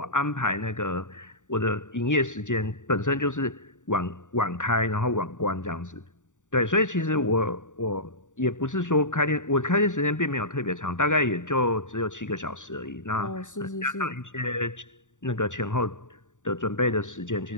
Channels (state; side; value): late; right; 0.86 ms